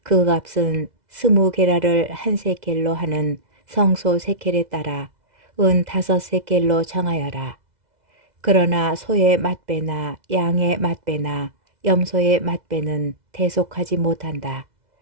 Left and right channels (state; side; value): late; left; 2.0 ms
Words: 그 값은 20게라를 한 세켈로 하는 성소 세켈에 따라 은 5세켈로 정하여라. 그러나 소의 맏배나 양의 맏배나 염소의 맏배는 대속하지 못한다.